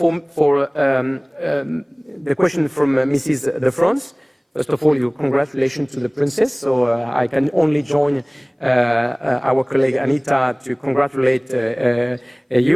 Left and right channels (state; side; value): identical; both; correlation 1.00